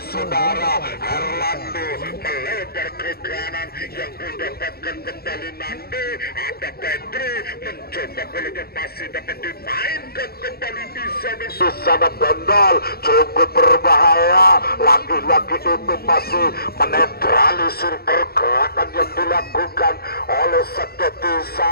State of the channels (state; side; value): late; right; 0.45 ms